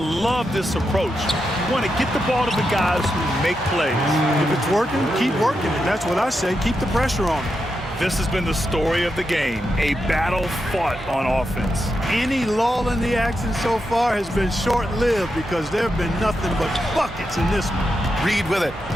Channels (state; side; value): normal; both; correlation 0.86